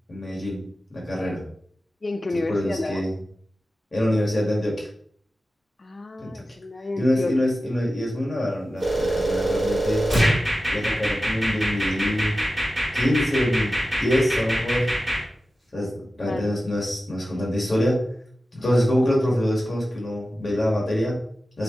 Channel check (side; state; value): both; normal; correlation 0.94